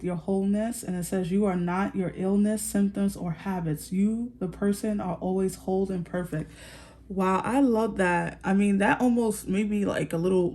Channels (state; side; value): identical; both; correlation 1.00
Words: your wholeness. And it says you are not your illness, symptoms, or habits. You, the person, are always whole and perfect. Wow, I love that. I mean, that almost made me like a